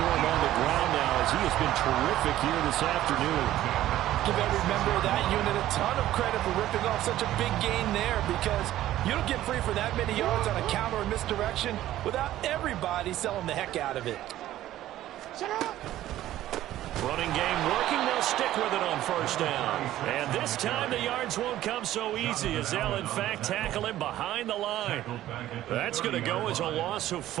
him on the ground now as he has been terrific here this afternoon. Give every member of that unit a ton of credit for ripping off such a big gain there, because you don't get free for that many yards on a counter or misdirection without everybody selling the heck out of it. Running game working. They'll stick with it on 1st down. And this time the yards won't come so easy as they'll, in fact, tackle him behind the line. That's going to go as a loss of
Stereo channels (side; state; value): left; quieter; 13.8 dB